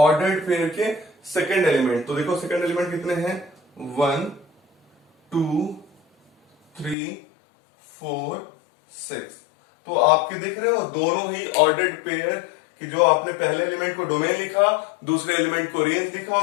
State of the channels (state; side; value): drops out; right; at 7.0 s